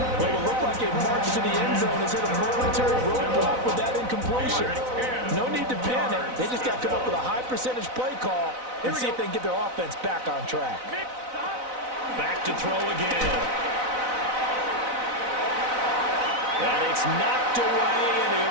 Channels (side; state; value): left; late; 4.0 ms